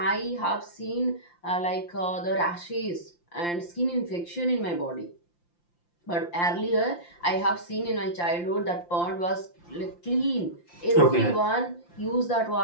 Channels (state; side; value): late; right; 5.8 ms